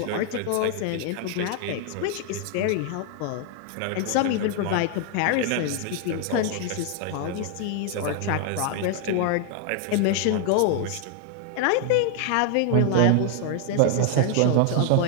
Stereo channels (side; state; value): both; different; correlation 0.00